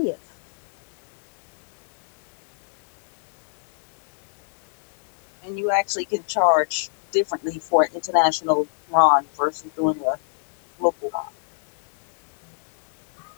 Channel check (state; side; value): silent; right; digital silence